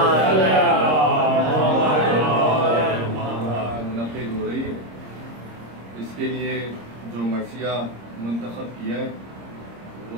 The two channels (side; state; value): left; late; 26 ms